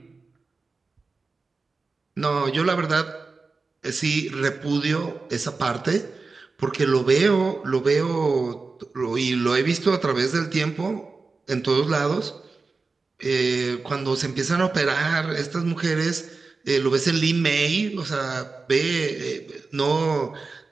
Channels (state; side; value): quieter; left; 4.1 dB